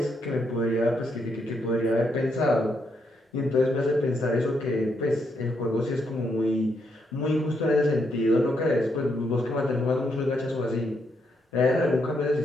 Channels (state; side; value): normal; both; correlation 0.78